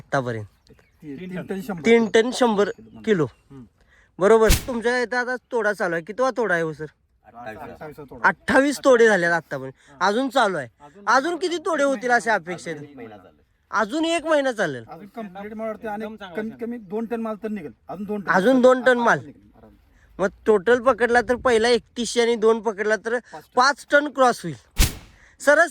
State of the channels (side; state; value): both; identical; correlation 1.00